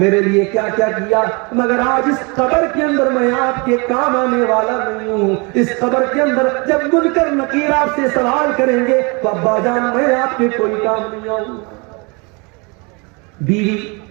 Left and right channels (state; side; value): quieter; left; 30.1 dB